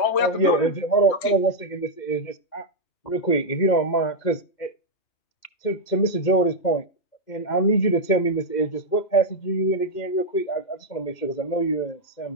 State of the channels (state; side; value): late; right; 2.1 ms